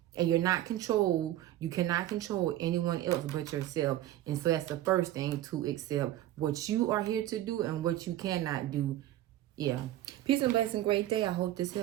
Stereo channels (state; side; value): quieter; left; 13.9 dB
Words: And you're not controlled. You cannot control anyone else but yourself. And so that's the first thing, to accept what you are here to do and what you cannot do. Yeah. Peace and blessing. Great day. I hope this